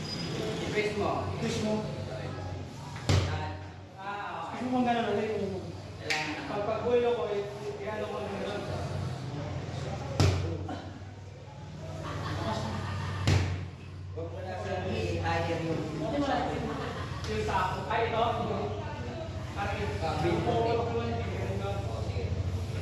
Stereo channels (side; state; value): both; identical; correlation 1.00